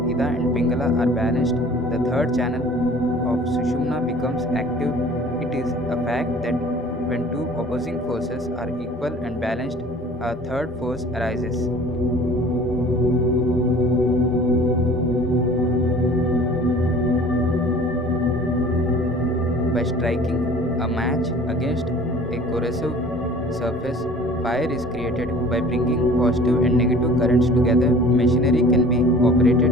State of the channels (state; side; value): normal; both; correlation 0.47